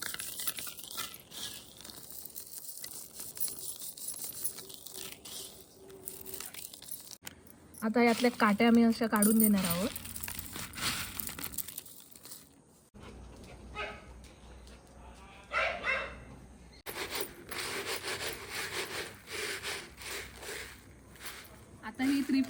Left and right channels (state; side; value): identical; both; correlation 1.00